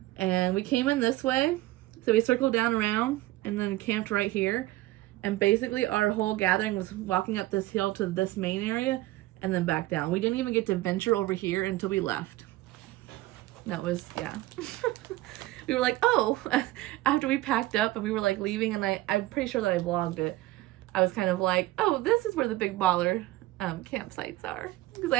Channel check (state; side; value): quieter; left; 17.7 dB